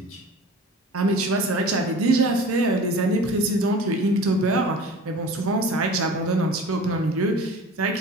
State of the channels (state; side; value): normal; both; correlation 0.40